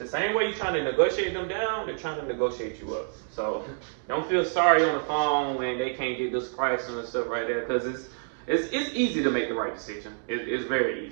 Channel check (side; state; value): left; silent; 60 dB below the other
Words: same way you're trying to negotiate them down, they're trying to negotiate you up. So don't feel sorry on the phone when they can't get this price and stuff right there. Because it's easy to make the right decision. It's very